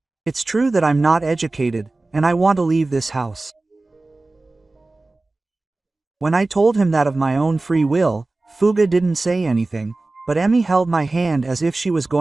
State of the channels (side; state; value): left; quieter; 3.1 dB